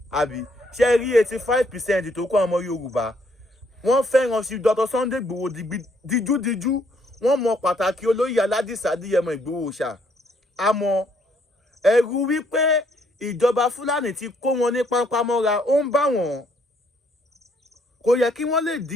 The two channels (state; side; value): normal; both; correlation 0.69